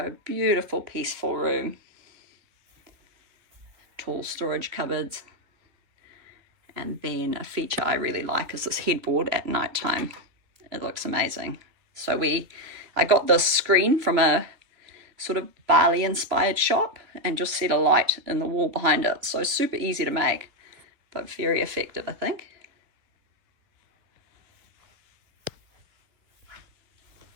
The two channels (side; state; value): left; late; 3.0 ms